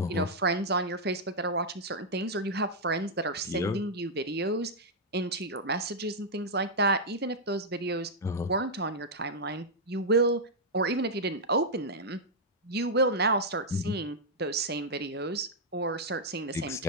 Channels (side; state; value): both; normal; correlation -0.05